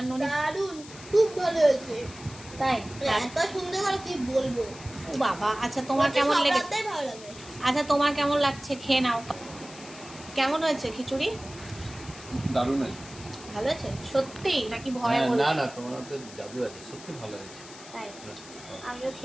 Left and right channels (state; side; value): noise; left; hiss, 17 dB below the sound